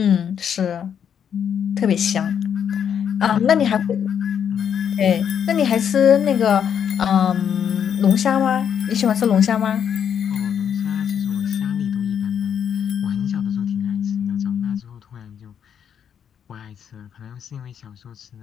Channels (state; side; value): quieter; right; 8.3 dB